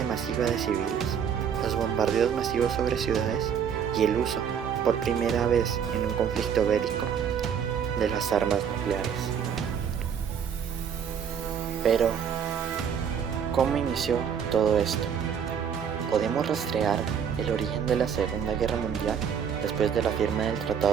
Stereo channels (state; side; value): quieter; left; 7.7 dB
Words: masiva de civiles, los bombardeos masivos sobre ciudades y el uso, por primera vez en un conflicto bélico, de las armas nucleares. Pero, ¿cómo inició todo esto? Podemos rastrear el origen de la Segunda Guerra Mundial después de la firma del